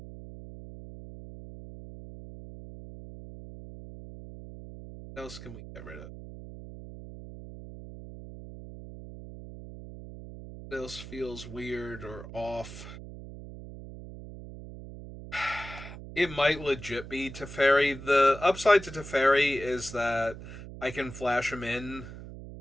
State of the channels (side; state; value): right; noise; hum, 13 dB below the sound